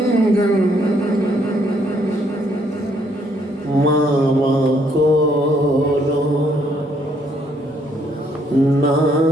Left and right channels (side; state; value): both; normal; correlation 0.69